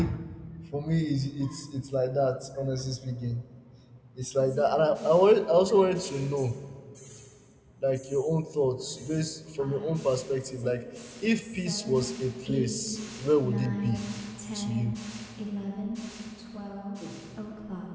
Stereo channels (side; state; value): both; identical; correlation 1.00